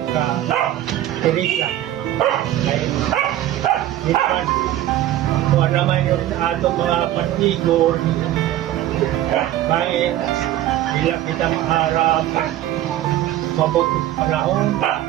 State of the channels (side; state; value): left; quieter; 13.3 dB